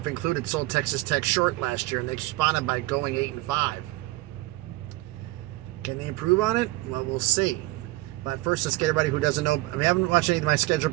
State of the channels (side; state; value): left; quieter; 19.5 dB